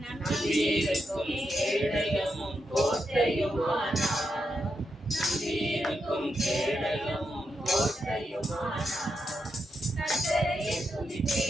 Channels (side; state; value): both; normal; correlation 0.85